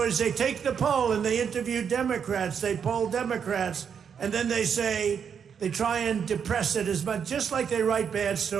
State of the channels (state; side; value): quieter; left; 7.3 dB